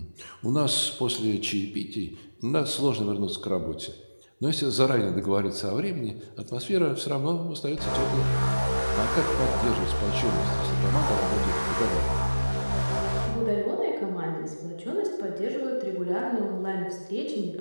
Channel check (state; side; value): inverted; both; correlation -1.00